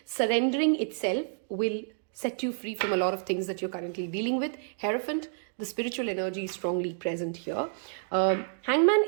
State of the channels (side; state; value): left; silent; digital silence